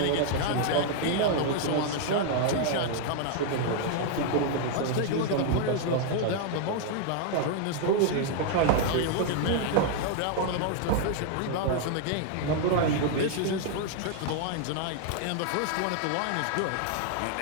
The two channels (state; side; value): different; both; correlation 0.00